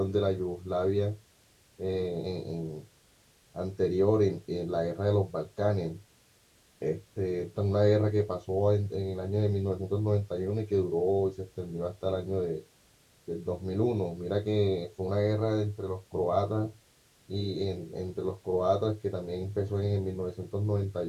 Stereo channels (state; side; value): identical; both; correlation 1.00